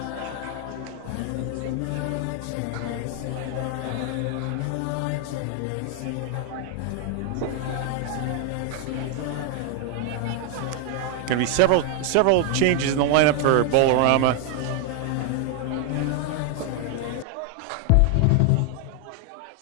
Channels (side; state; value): both; different; correlation 0.01